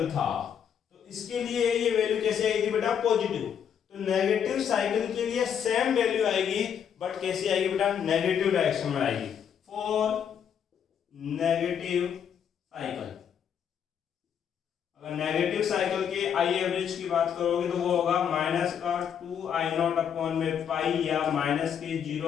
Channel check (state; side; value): quieter; right; 8.2 dB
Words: था, तो इसके लिए ये वैल्यू कैसे आएगी बेटा, पॉजिटिव। तो नेगेटिव साइकिल के लिए सेम वैल्यू आएगी, बट कैसे आएगी बेटा, नेगेटिव डायरेक्शन में आएगी, फॉर नेगेटिव साइकिल। अगर नेगेटिव साइकिल के आई एवरेज की बात करोगे तो वो होगा माइनस का 2i0 अपॉन में पाई, या माइनस के